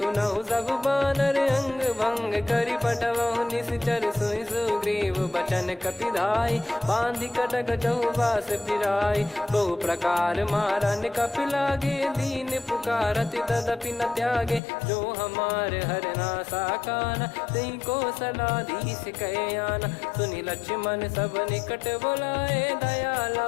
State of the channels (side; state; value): right; drops out; at 14.6 s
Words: सब बानर, अंग भंग करि पठवहु निश्चर। सुनि सुग्रीव बचन कपिधाई, बांधि कटक चहुबास फिराई। बहु प्रकार मारन कपि लागे, दीन पुकारत तदपि न त्यागे। जो हमार हरना साकाना, तई को सलाधीश कहे आना। सुनि लक्ष्मण सब निकट बुलाए, दया